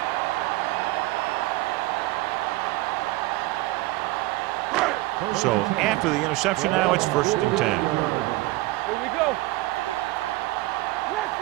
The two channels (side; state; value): left; quieter; 19.7 dB